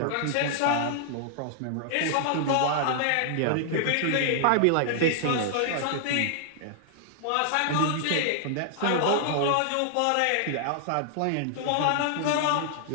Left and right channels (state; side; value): different; both; correlation -0.01